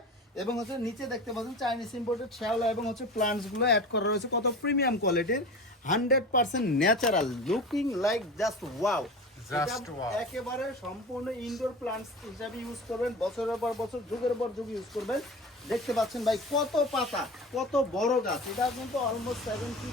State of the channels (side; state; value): both; normal; correlation 0.32